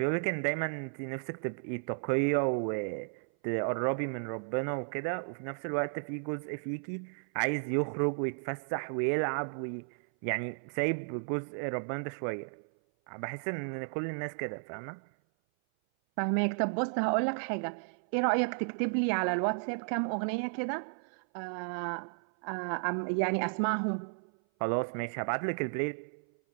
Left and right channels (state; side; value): silent; left; 55 dB below the other